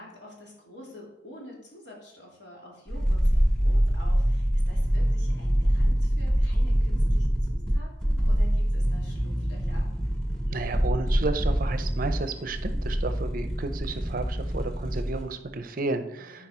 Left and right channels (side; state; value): both; normal; correlation 0.94